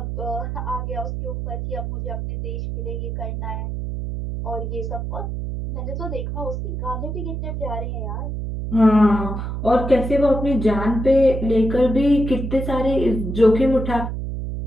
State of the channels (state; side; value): noise; right; hum, 4 dB below the sound